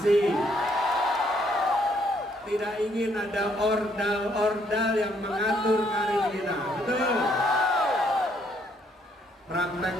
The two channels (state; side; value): normal; both; correlation 0.69